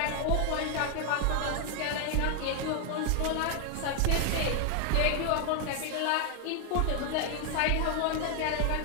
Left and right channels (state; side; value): different; both; correlation 0.00